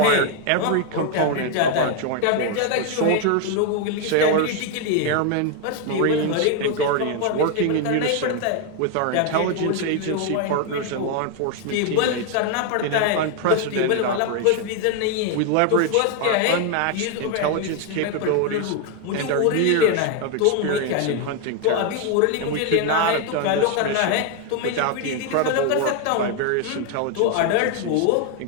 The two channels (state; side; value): different; both; correlation 0.01